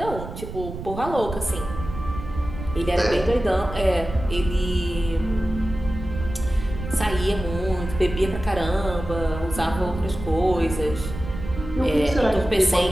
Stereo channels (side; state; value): right; noise; rumble, 9 dB below the sound